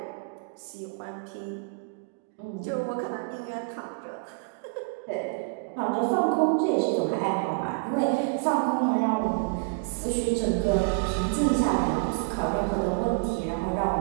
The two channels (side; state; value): left; quieter; 33.9 dB